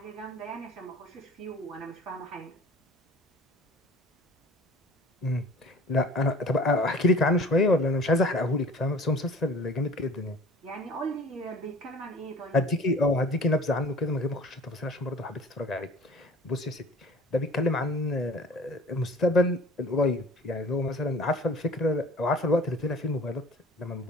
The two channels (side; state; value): both; normal; correlation 0.46